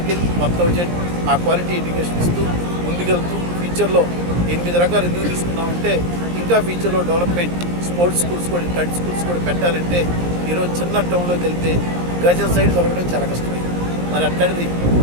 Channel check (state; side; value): late; left; 17 ms